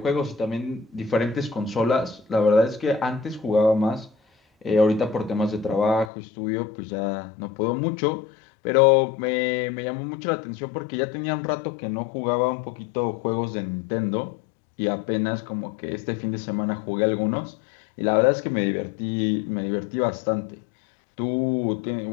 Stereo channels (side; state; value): right; drops out; at 6.1 s